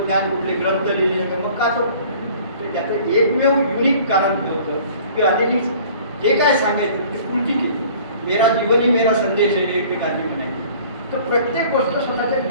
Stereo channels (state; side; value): inverted; both; correlation -0.50